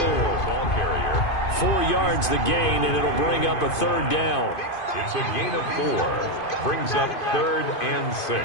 carrier. 4 yards the gain, and it'll bring up a 3rd down. It's a gain of 4. Brings up 3rd and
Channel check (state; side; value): late; right; 2.5 ms